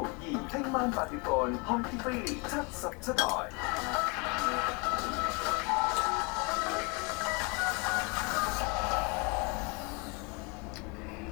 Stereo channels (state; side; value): quieter; right; 30.3 dB